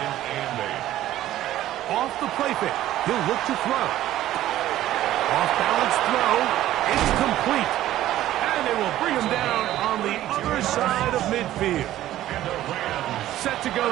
and 8. Off the play fake. He'll look to throw. Off balance throw. It's complete. And they will bring him down on the other side of midfield. And the Rams Set to go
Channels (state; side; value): quieter; left; 13.7 dB